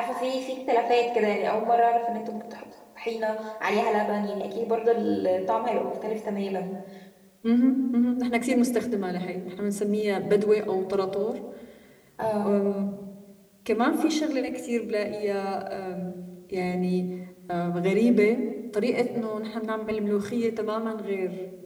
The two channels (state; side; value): identical; both; correlation 1.00